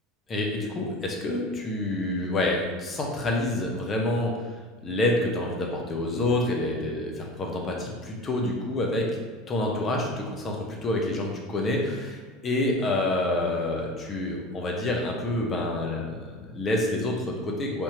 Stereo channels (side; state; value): both; normal; correlation 0.35